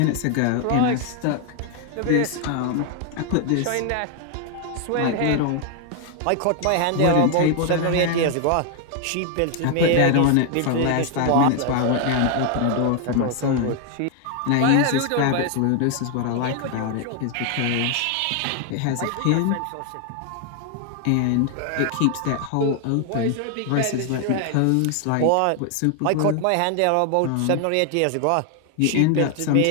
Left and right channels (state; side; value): different; both; correlation 0.00